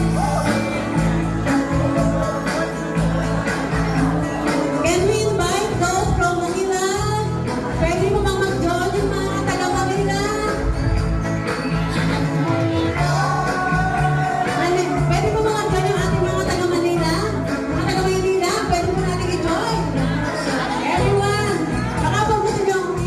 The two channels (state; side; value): identical; both; correlation 1.00